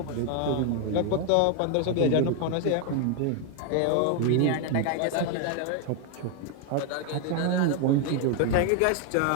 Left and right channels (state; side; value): different; both; correlation 0.01